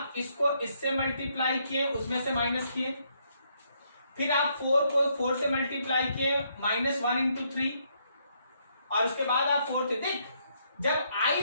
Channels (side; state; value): both; inverted; correlation -0.73